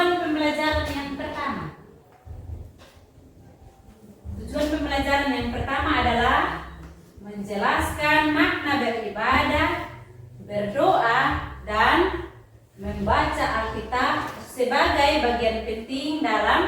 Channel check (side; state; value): both; identical; correlation 1.00